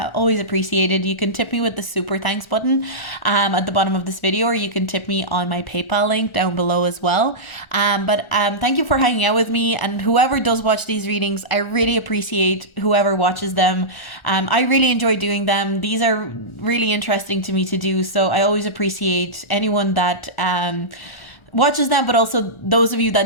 appreciated. You can tip me with the super thanks button at the bottom of this video, or you can tip me on my PayPal link down below as well. But thank you for hanging out with me. And whoever does watch these readings, I really appreciate whoever watches them. I really enjoy doing them. These are really interesting to me to do, so I always appreciate anyone that watches them, but also those of you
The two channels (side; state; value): right; late; 1.4 ms